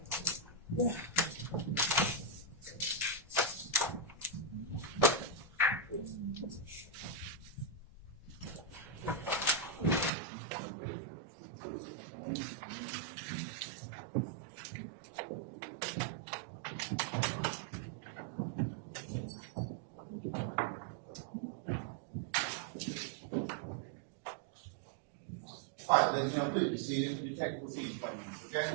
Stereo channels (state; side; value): drops out; left; at 10.1 s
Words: All right, ladies and gentlemen, please be seated. Your technical proceeding 20 minutes, okay?